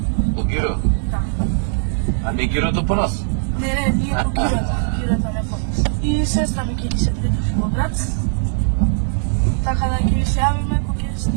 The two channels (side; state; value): left; silent; digital silence